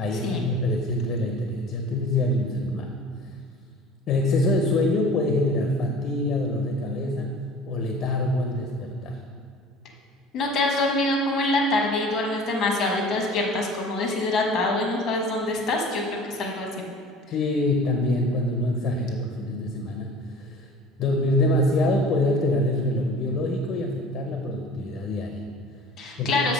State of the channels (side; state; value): both; normal; correlation 0.43